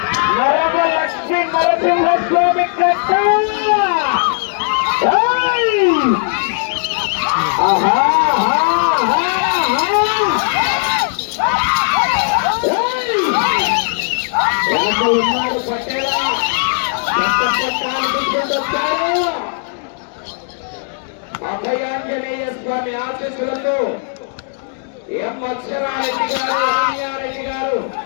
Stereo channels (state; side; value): silent; right; digital silence